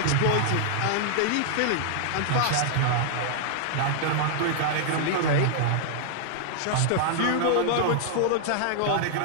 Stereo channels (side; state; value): both; different; correlation -0.01